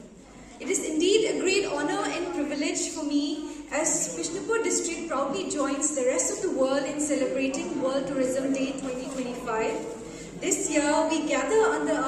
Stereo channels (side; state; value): both; identical; correlation 1.00